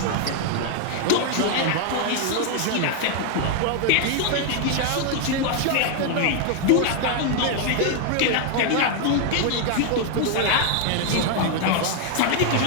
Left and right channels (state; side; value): different; both; correlation 0.00